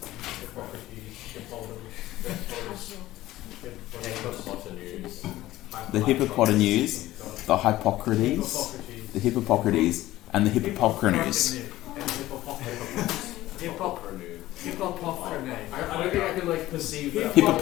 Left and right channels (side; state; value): right; quieter; 16.0 dB